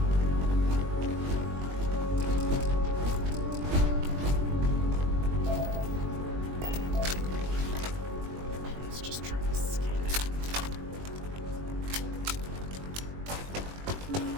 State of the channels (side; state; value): left; late; 21 ms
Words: Let's just try to scan it.